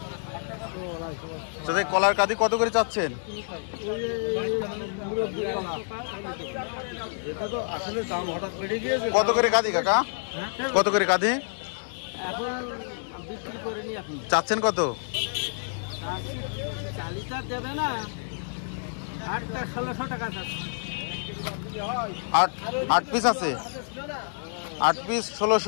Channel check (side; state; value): right; silent; digital silence